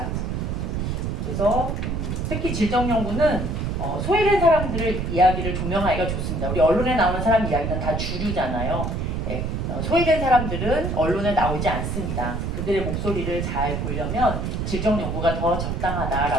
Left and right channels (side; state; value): right; noise; rumble, 2 dB below the sound